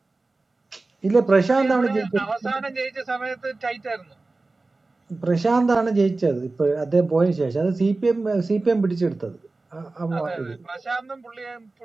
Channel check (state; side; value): quieter; left; 3.4 dB